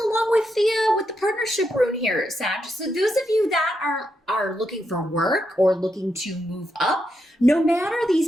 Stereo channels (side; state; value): both; normal; correlation 0.82